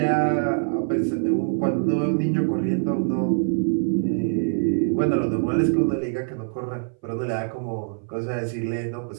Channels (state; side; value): silent; left; 60 dB below the other